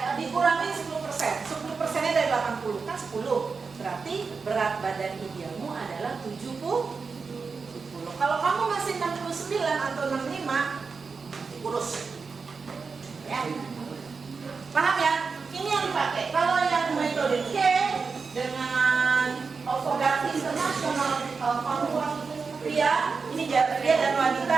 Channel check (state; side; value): quieter; left; 4.9 dB